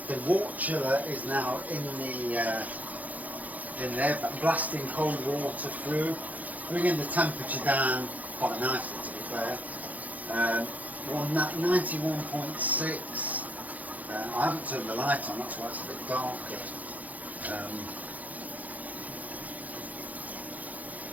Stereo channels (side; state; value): left; late; 0.078 ms